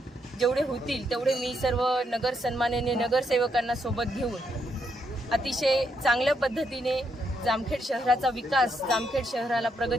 जेवढे होतील तेवढे मी सर्व नगर सन्माननीय नगरसेवकांना सोबत घेऊन अतिशय चांगल्या पद्धतीने जामखेड शहराचा विकास, जामखेड शहराला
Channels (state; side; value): normal; both; correlation 0.78